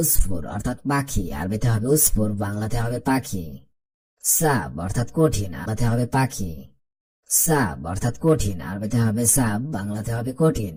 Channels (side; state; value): both; identical; correlation 1.00